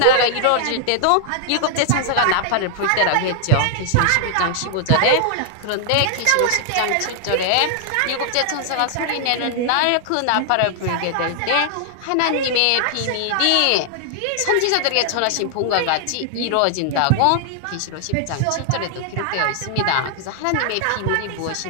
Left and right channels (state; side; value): different; both; correlation 0.00